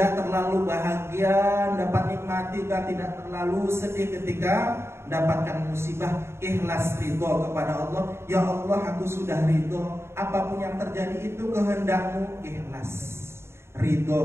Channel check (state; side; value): late; left; 0.12 ms